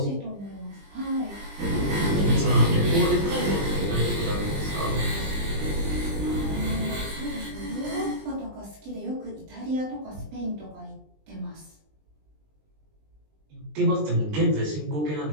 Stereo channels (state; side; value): late; left; 20 ms